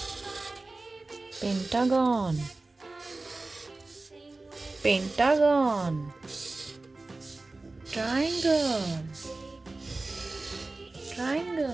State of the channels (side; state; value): left; quieter; 3.2 dB